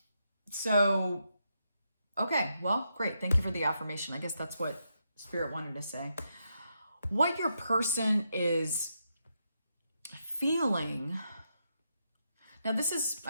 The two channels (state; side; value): inverted; both; correlation -0.82